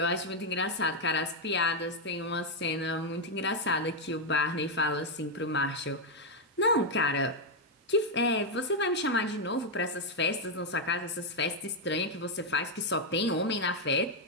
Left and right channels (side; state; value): both; normal; correlation 0.01